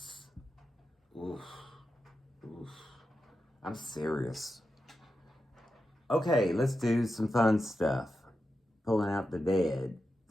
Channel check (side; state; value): both; normal; correlation 0.89